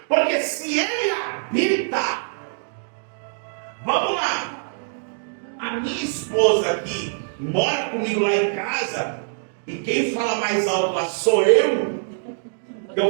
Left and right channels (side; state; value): left; silent; digital silence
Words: Porque se ele habita, vamos lá, a minha esposa aqui mora comigo lá em casa, e quem fala mais alto lá sou eu.